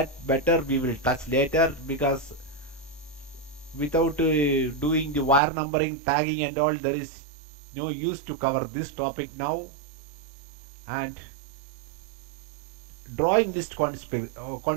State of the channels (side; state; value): left; drops out; at 5.4 s